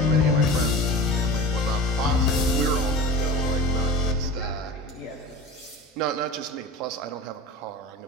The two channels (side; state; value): both; normal; correlation 0.32